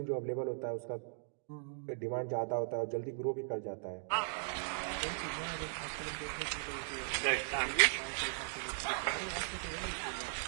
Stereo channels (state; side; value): silent; left; digital silence